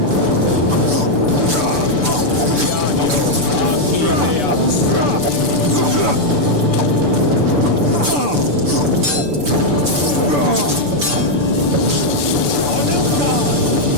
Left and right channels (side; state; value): left; late; 6.9 ms